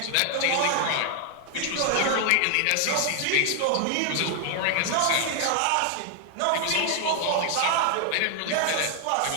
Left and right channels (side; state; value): both; different; correlation 0.00